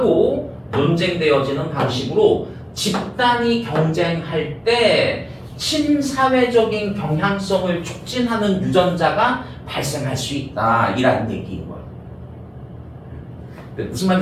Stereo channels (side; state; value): both; identical; correlation 1.00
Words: 논쟁되어지는 방식으로 집단이 경쟁할 때 친사회적인 경향성을 촉진하는 유전자가 발생할 수 있다 이라는 얘기인 거야. 무슨